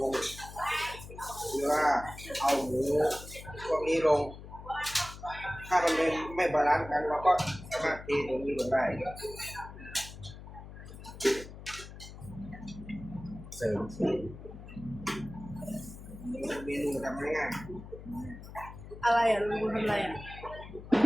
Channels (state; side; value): noise; left; hum, 14 dB below the sound